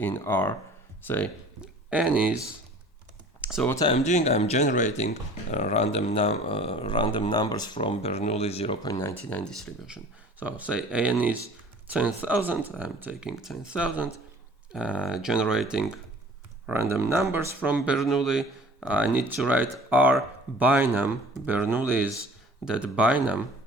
R. Say n is, so what I'm doing, I'm generating random numbers from Bernoulli 0.99 distribution. So say n is 10,000, I'm taking 10,000, generating random numbers from Bernoulli. I need to write R binom. Bernoulli is that binom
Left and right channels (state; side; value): normal; both; correlation 0.47